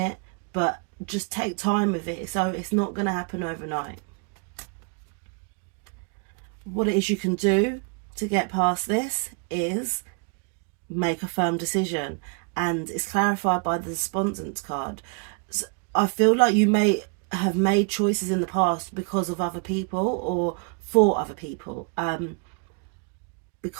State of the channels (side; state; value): left; quieter; 38.0 dB